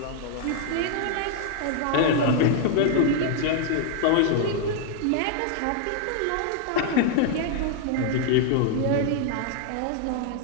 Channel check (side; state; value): both; different; correlation 0.00